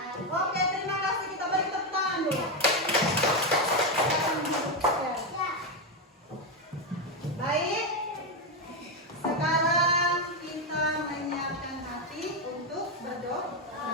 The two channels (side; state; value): both; normal; correlation 0.07